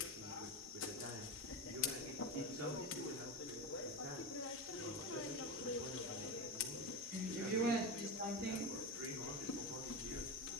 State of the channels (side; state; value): both; normal; correlation 0.18